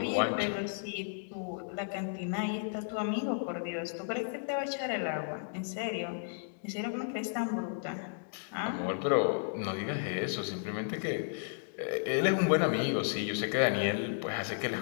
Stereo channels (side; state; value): right; silent; digital silence